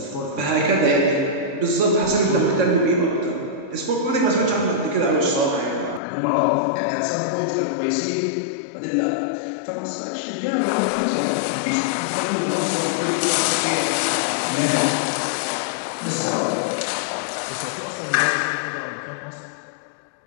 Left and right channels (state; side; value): drops out; right; at 6.0 s